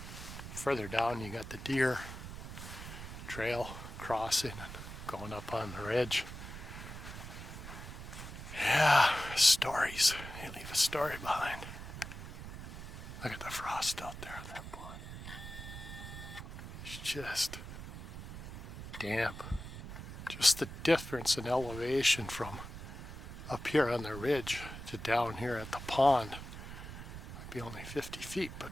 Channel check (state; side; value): noise; right; rumble, 10 dB below the sound